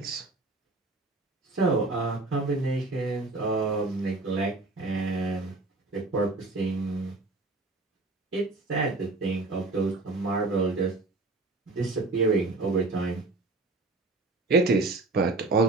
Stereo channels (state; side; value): quieter; left; 3.2 dB